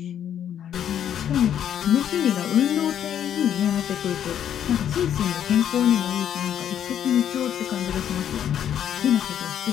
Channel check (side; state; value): right; quieter; 9.7 dB